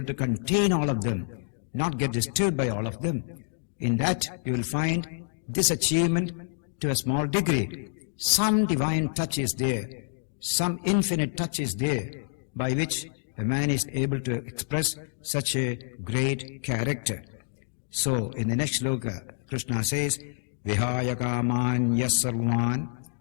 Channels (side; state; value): right; silent; digital silence